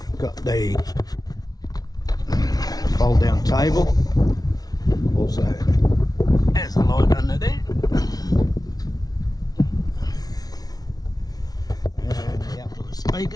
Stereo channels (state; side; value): late; right; 0.19 ms